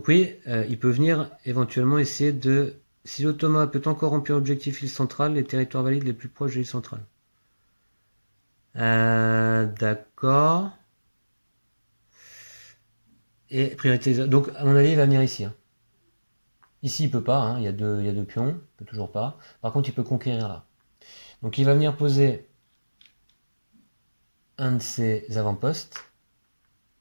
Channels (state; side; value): inverted; both; correlation -1.00